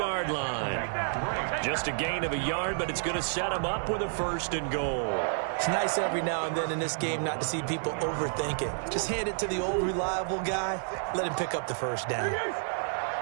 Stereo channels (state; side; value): silent; left; digital silence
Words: line. Just a gain of a yard, but it's going to set him up with a 1st and goal. It's nice every now and then in this game not to see people overthink it. Just hand it to the old reliable guy. Let him pick up the 1st down.